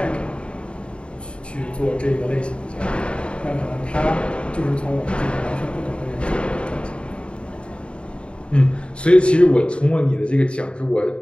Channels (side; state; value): right; late; 0.056 ms